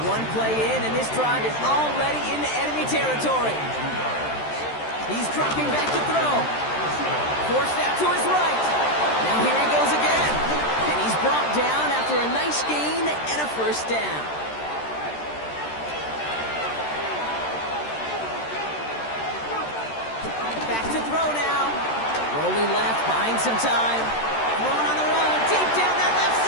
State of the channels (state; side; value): late; right; 13 ms